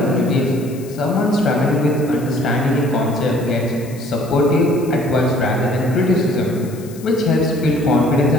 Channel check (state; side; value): noise; left; hiss, 21 dB below the sound